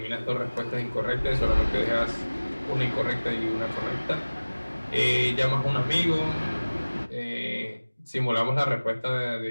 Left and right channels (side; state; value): both; inverted; correlation -1.00